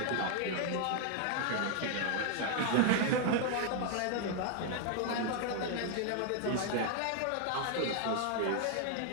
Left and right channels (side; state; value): both; different; correlation 0.00